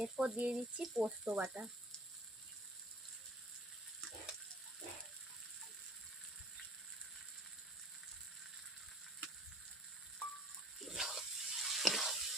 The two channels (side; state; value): both; normal; correlation 0.52